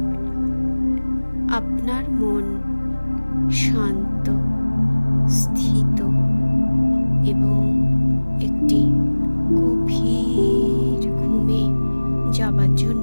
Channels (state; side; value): inverted; both; correlation -1.00